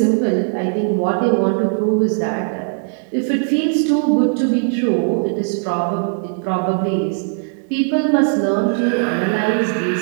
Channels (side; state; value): left; silent; digital silence